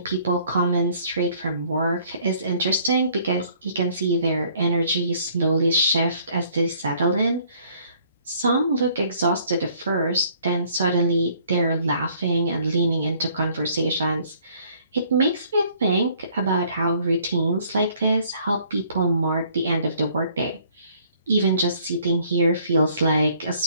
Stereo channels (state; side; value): inverted; both; correlation -0.60